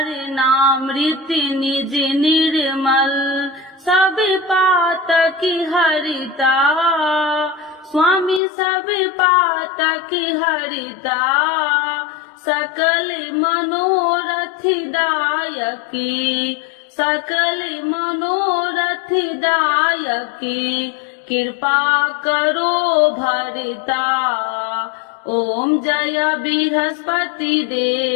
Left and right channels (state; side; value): drops out; right; at 8.4 s